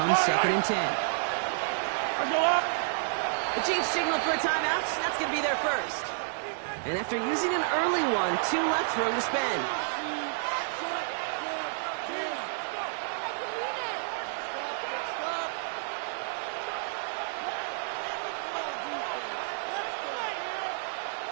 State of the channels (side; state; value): left; silent; digital silence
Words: second and 10. Let's go up. The Chiefs signal for a timeout. That's going to be their first. And after using an early one, 2 left for him to spend.